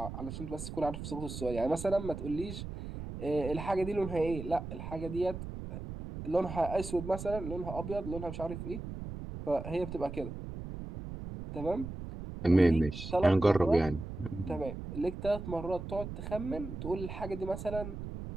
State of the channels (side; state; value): right; noise; rumble, 8 dB below the sound